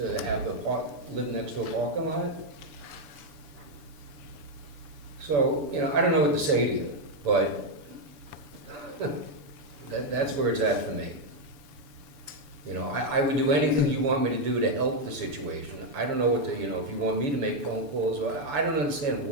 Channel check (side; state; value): left; late; 6.9 ms